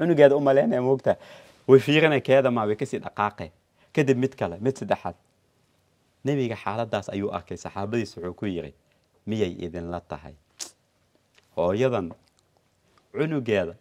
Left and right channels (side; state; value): both; identical; correlation 1.00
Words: u malaynaya moogta way fiirinay keeda maa way kasii dhaqaaqay kadib mid kale mid saddexaad nebiga xaaladaas ayuu arkay saxaabadiis wuxuu ku yiri miyay idinla tahay hooyadan cunugeeda